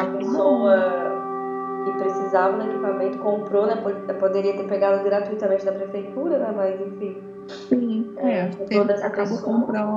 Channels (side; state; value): both; identical; correlation 1.00